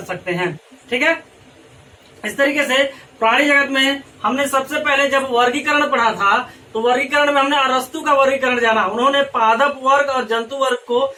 सकते हैं। ठीक है, इस तरीके से प्राणी जगत में हमने सबसे पहले जब वर्गीकरण पढ़ा था तो वर्गीकरण में हमने अरस्तु का वर्गीकरण जाना। उन्होंने पादप वर्ग और जंतु वर्ग को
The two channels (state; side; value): identical; both; correlation 1.00